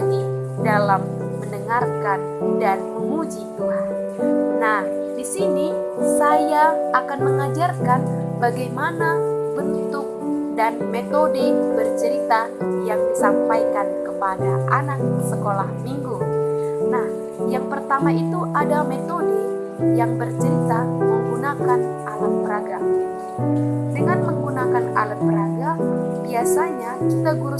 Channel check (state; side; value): identical; both; correlation 1.00